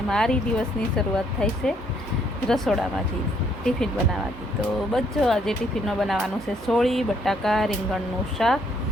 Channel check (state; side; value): normal; both; correlation 0.68